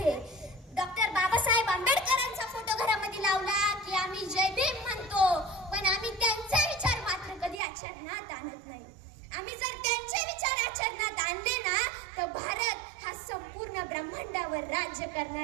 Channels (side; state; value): left; drops out; at 7.6 s